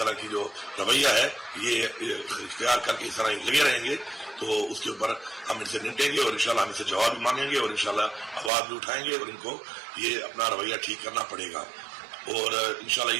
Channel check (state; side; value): drops out; left; at 8.5 s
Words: طرح کی جو رویہ ہے یہ اختیار کر کے اس طرح لگے رہیں گے تو اس کے اوپر ہم ان سے نمٹیں گے اور انشاءاللہ ہم ان سے جواب بھی مانگیں گے اور انشاءاللہ آواز بھی اٹھائیں گے اور ان کو یہ اپنا رویہ ٹھیک کرنا پڑے گا اور انشاءاللہ